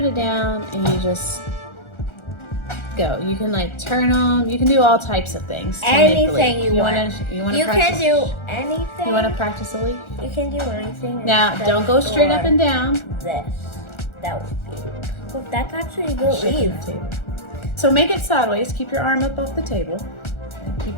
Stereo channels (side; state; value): right; late; 1.4 ms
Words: it down and you just go. You can like turn them. You can do all types of things. Anything you want. You can do anything. You want to practice a leaf? You can do anything. Now, don't go straight up and down. This. That would be. Well, that's actually a good leaf. So make it sideways. Keep your arm up off the table. And